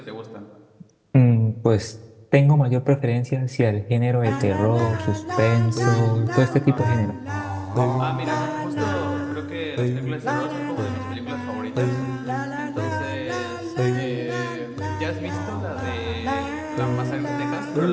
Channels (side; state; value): both; identical; correlation 1.00